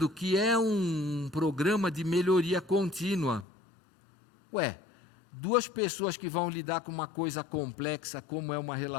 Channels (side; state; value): right; drops out; at 3.5 s